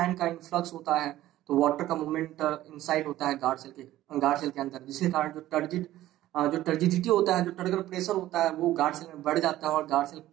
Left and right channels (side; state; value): left; quieter; 14.6 dB